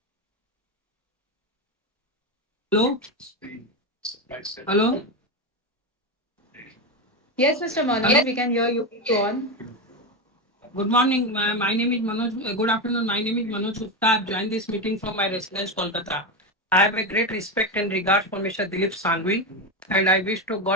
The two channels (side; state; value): both; normal; correlation 0.13